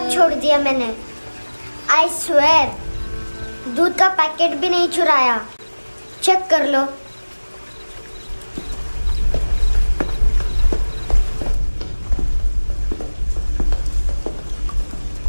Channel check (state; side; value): inverted; both; correlation -1.00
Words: छोड़ दिया मैंने। आई स्वेयर, दूध का पैकेट भी नहीं चुराया। चेक कर लो।